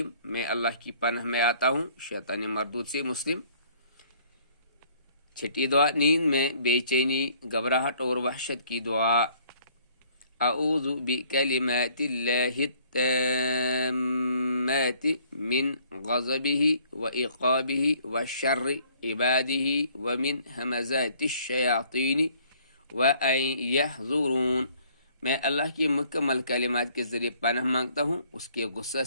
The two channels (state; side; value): inverted; both; correlation -0.60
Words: میں اللہ کی پناہ میں آتا ہوں شیطان مردود سے. مسلم. چھٹی دعا. نیند میں بے چینی، گھبراہٹ اور وحشت کی دعا: اعوذ بکلمات اللہ التامات من غضبہ وعقابہ وشر عبادہ ومن ہمزات الشیاطین وان یحضرون. میں اللہ کی مکمل کلمات کے ذریعے پناہ مانگتا ہوں اس کے غصہ